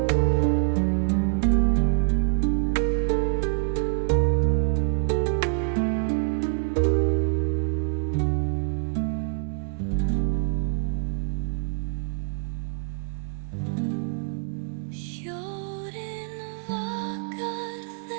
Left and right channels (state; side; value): silent; left; digital silence